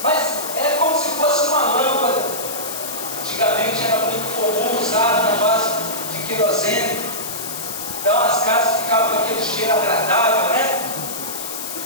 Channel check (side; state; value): left; noise; hiss, 7 dB below the sound